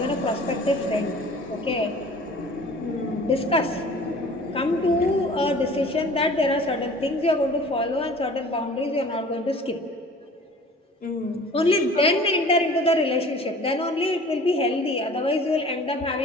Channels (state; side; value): normal; both; correlation 0.46